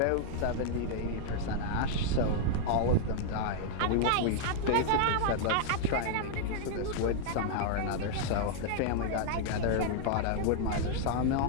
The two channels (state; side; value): different; both; correlation 0.00